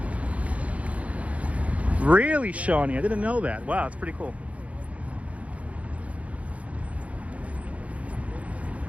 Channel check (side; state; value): left; late; 0.066 ms